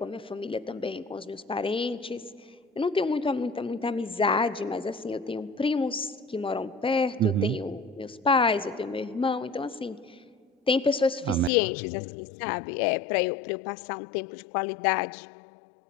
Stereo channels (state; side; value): drops out; right; at 11.5 s